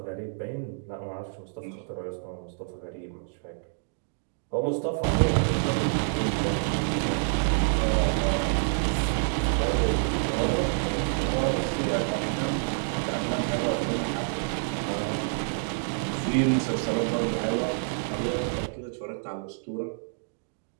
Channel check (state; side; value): silent; left; digital silence